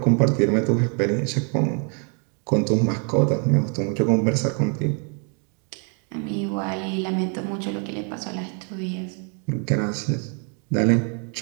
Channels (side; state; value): left; quieter; 39.2 dB